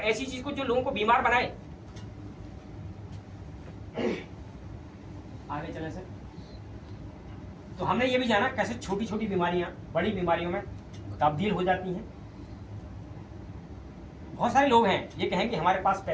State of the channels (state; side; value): identical; both; correlation 1.00